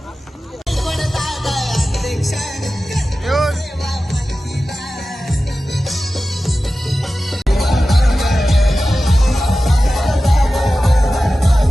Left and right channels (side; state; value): both; normal; correlation 0.95